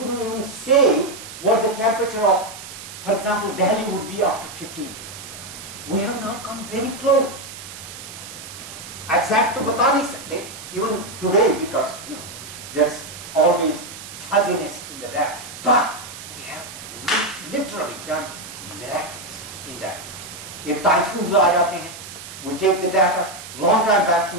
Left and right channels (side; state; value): right; noise; hiss, 13 dB below the sound